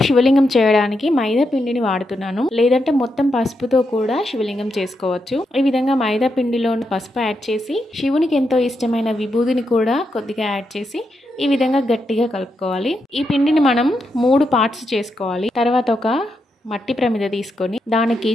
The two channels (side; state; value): both; normal; correlation 0.83